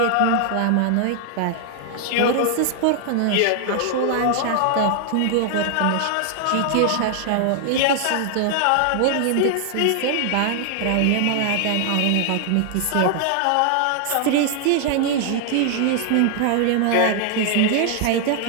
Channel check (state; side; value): different; both; correlation 0.00